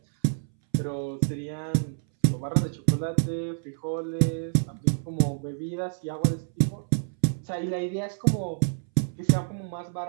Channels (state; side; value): silent; left; 60 dB below the other